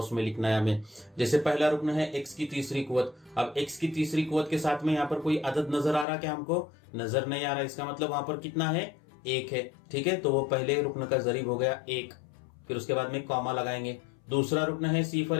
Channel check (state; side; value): drops out; right; at 6.1 s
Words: में लिखना है हमें। जैसे पहला रुकन है x की तीसरी कुव्वत। अब x की तीसरी कुव्वत के साथ में यहाँ पर कोई अदद नजर आ रहा क्या? हमको नजर नहीं आ रहा। इसका मतलब वहां पर कितना है? 1 है, ठीक है। तो वो पहले रुकन का जरीब हो गया 1। फिर उसके बाद में कॉमा लगाएंगे। दूसरा रुकन है